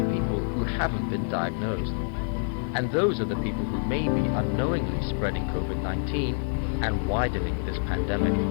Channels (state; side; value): silent; right; digital silence